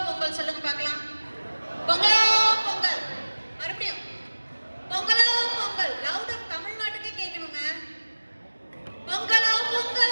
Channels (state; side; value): inverted; both; correlation -1.00